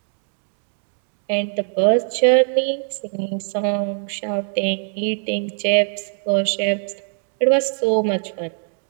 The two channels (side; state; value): left; silent; 64 dB below the other